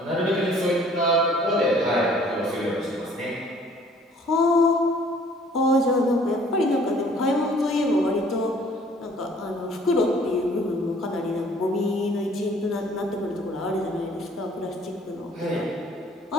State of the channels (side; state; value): both; normal; correlation 0.56